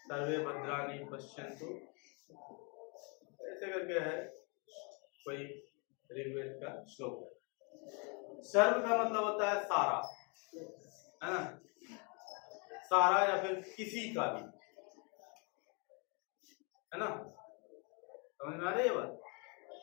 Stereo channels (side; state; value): right; quieter; 34.1 dB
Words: सर्वे भद्राणि पश्यन्तु, ऐसे करके है कोई ऋग्वेद का श्लोक है। सर्व का मतलब होता है सारा, है ना? सारा या फिर किसी का भी, है ना? समझ में आ रही है बात?